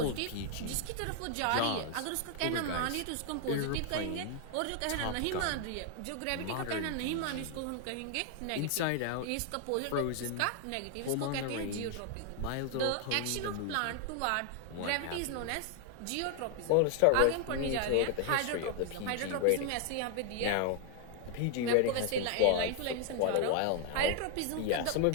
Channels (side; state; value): both; different; correlation 0.00